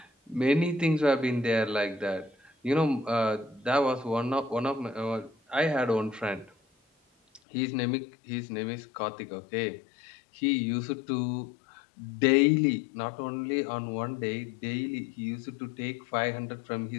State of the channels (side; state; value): right; drops out; at 7.4 s